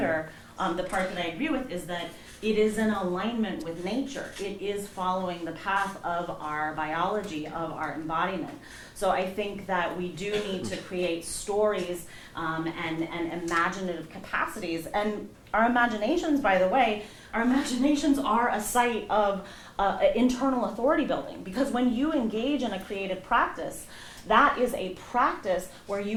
the part that I agree with is that it is in alignment with nature. It is following the path of our biology, of our embodiment. So I think that we do need to create stories and imaginative capacities. And our imaginations, by the way, our imaginations are a site of internal authority building. Because when you engage in a creative practice, that is a practice where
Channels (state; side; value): identical; both; correlation 1.00